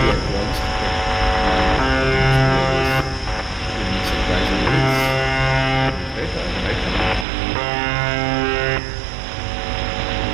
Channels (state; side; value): drops out; left; at 7.2 s